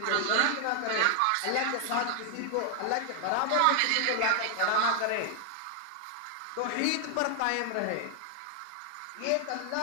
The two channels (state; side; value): different; both; correlation 0.00